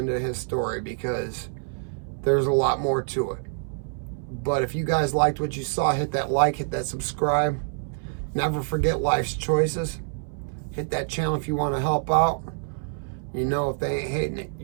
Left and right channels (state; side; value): silent; left; 61 dB below the other